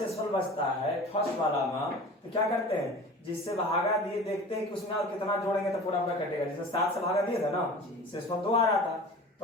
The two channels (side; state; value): both; normal; correlation 0.39